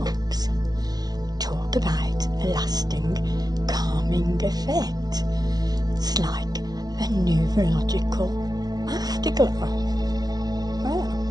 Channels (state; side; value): late; left; 0.19 ms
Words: Talk about a lasting calming effect. It's like a neurological afterglow. Well,